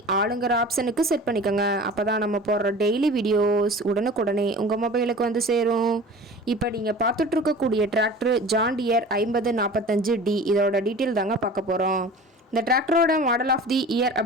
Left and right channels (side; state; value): both; normal; correlation 0.39